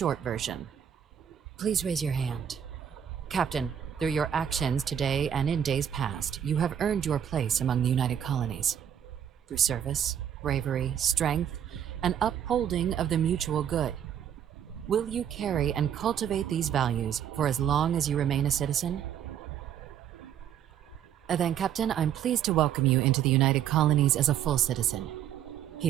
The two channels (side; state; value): left; quieter; 9.4 dB